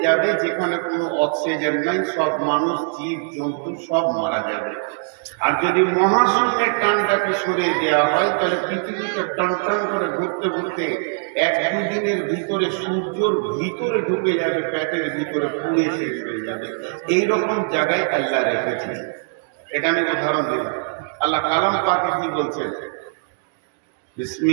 যাবে যেখানে কোনো অক্সিজেন নাই, সব মানুষ জীব জন্তু সব মারা যাবে। আর যদি মহাশূন্যের টানটাকে সরিয়ে দেওয়া হয়, তাহলে পৃথিবীটা টান টান করে ঘুরতে ঘুরতে 1-2 দিনের ভিতরে সূর্যর ভিতরে ঢুকে যাবে, পেটের ভিতরে পুড়ে শেষ হয়ে যাবে। এইরকম জায়গায় আল্লাহ রেখেছেন। এটা আমি উদাহরণ দিলাম। আল্লাহ কালাম পাকে কি বলছেন?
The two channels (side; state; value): left; silent; digital silence